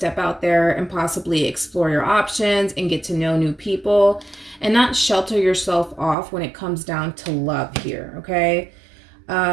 out there and possibly explore your options and get to know new people and not shelter yourself off when it comes down to love here, okay?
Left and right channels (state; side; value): drops out; left; at 6.2 s